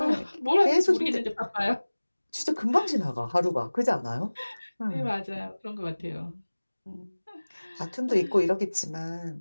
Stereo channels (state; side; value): inverted; both; correlation -1.00